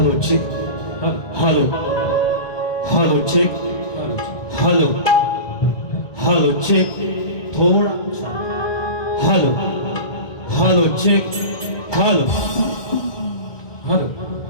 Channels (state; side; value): late; right; 1.2 ms